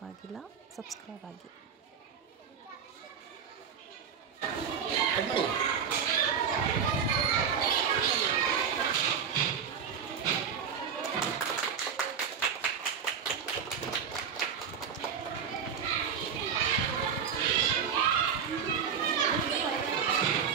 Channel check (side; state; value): left; quieter; 7.2 dB